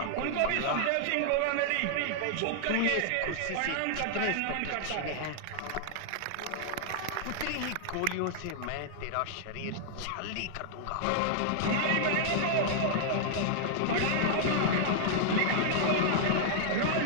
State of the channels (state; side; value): different; both; correlation -0.01